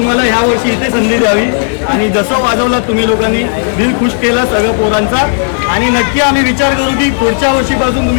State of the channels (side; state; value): right; silent; 70 dB below the other